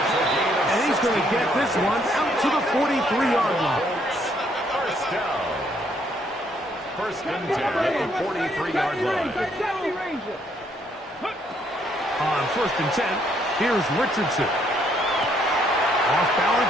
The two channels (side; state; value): both; normal; correlation 0.69